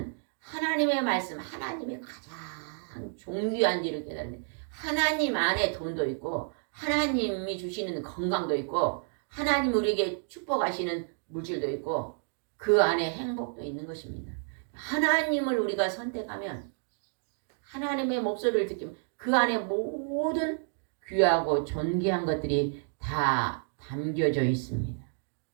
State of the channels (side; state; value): left; silent; 58 dB below the other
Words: 하나님의 말씀, 하나님의 가장 존귀한지를 깨달는데 하나님 안에 돈도 있고 하나님이 주시는 건강도 있고 하나님 우리에게 축복하시는 물질도 있고 그 안에 행복도 있는 것입니다. 하나님을 우리가 선택하면 하나님의 목소리를 듣기면 그 안에 모든 귀하고 존귀한 것들이 다 담겨져 있습니다.